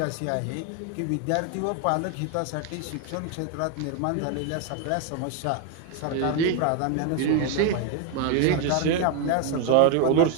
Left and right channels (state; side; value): different; both; correlation 0.01